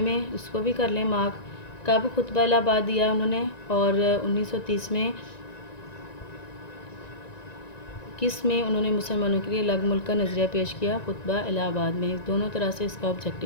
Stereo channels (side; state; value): right; late; 1.9 ms